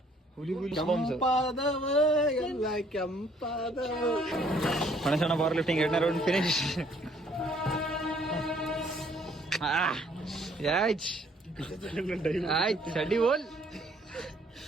ಹುಲಿ ಹುಲಿ ಕೆಂಪಾದವ ಎಲ್ಲ ಕೆಂಪಾದವ. ಗಣೇಶಣ್ಣ ಪವರ್ ಲಿಫ್ಟಿಂಗ್ 2ನೇ ರೌಂಡ್ ಫಿನಿಶ್. ಆಯ್ತು ಚಡ್ಡಿ ಹೋಲ್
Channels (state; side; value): normal; both; correlation 0.62